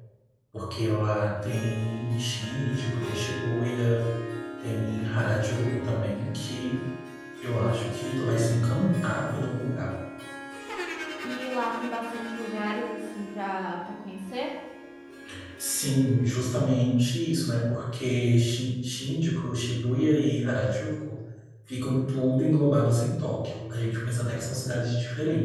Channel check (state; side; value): identical; both; correlation 1.00